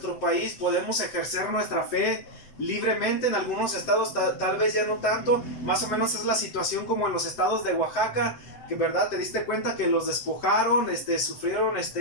país, podemos ejercer nuestra fe libremente. En algunos estados tal vez ya no tanto. Más o menos es la situación como en los estados de Oaxaca, que verdad te diste cuenta que los despojaron, sufrieron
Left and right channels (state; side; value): late; right; 7.8 ms